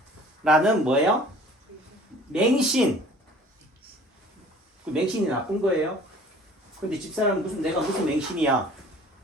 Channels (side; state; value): both; normal; correlation 0.49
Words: 라는 뭐예요? 맹신. 그 맹신이 나쁜 거예요. 근데 집사람은 내가 무슨 맹신이야?